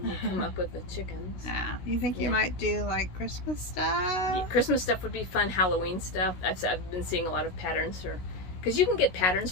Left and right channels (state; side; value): late; right; 16 ms